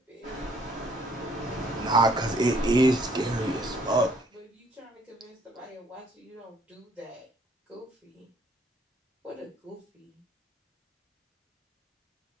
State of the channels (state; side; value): normal; both; correlation 0.63